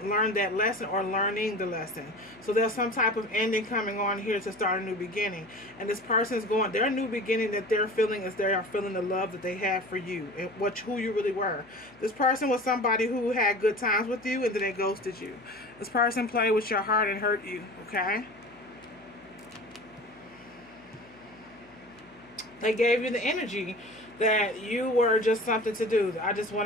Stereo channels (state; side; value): noise; left; hum, 29 dB below the sound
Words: that lesson or learning the lesson. So there's some type of ending coming on here to start a new beginning. And this person's going, their new beginning that they're feeling is they are feeling the love that they have for you and who you really were. This person was somebody who had good times with you and then they ghosted you. This person played with your heart and hurt you, okay? They gave you the energy that you were just something to do. I just